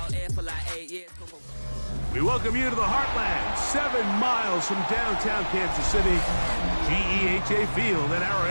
here for like 8 years. We welcome you to the Heartland, 7 miles from downtown Kansas City. GEHA Field at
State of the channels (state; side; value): inverted; both; correlation -1.00